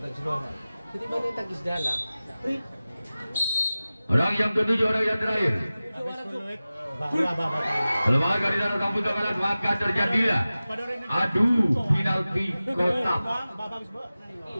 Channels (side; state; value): both; inverted; correlation -0.97